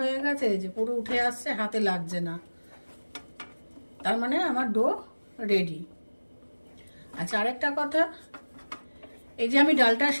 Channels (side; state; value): both; inverted; correlation -1.00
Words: গেছে, যে পুরো উঠে আসছে, হাতে লাগছে না, তার মানে আমার ডো রেডি। আচ্ছা, আরেকটা কথা, এই যে আমি ডালটা